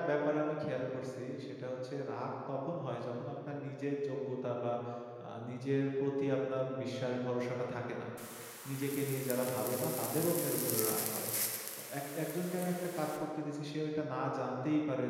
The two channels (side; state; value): both; identical; correlation 1.00